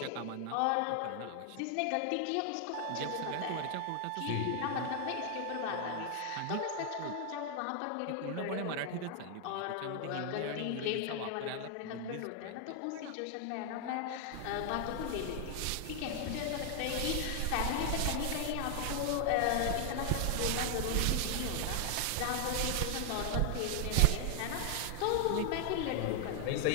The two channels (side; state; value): both; different; correlation 0.00